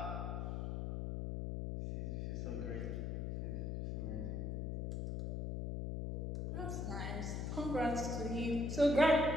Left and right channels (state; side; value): noise; left; hum, 2 dB below the sound